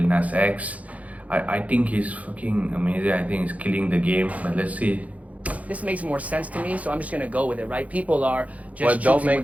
Nas X? I think he's fucking amazing. I think he's killing the game. But let's see. This makes more sense to me, so I'm just gonna go with it, right? People are just What don't choosing make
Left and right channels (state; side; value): late; left; 0.069 ms